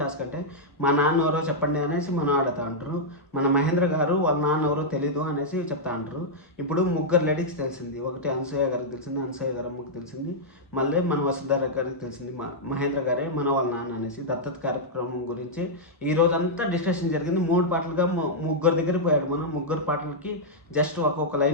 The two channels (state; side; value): normal; both; correlation -0.07